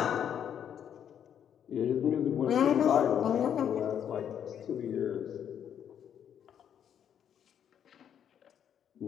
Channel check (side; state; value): right; quieter; 9.0 dB